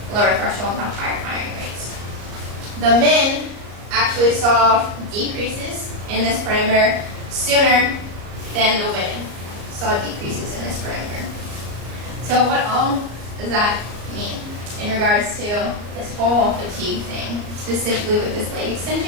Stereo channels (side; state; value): left; late; 34 ms